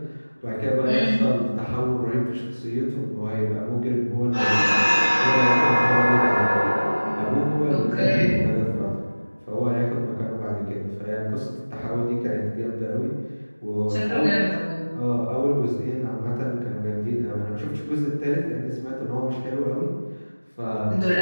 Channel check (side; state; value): both; inverted; correlation -1.00